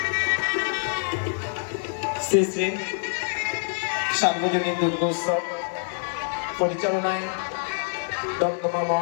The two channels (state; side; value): silent; right; digital silence